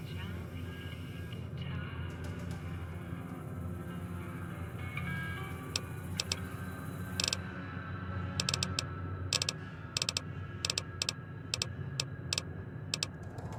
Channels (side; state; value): both; identical; correlation 1.00